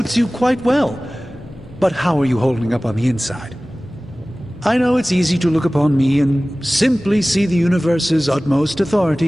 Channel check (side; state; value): both; normal; correlation 0.98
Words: you quite well. But how are you holding up on the inside? I know it's easy to look upon me and simply see the universe's utmost